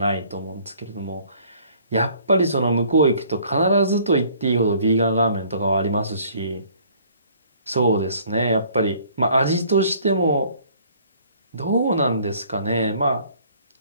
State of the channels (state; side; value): inverted; both; correlation -0.57